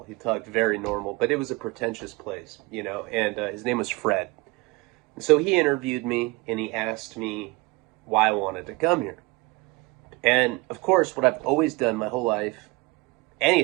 He talked very normal, but it was a pretentious place, and his name was Fred. So he interviewed me, and he asked me why I wanted to come here. And, of course, what I've always done my whole life,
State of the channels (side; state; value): left; quieter; 24.4 dB